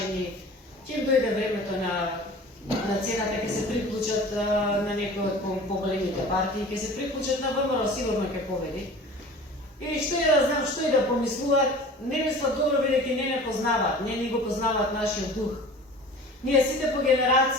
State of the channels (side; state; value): both; normal; correlation 0.41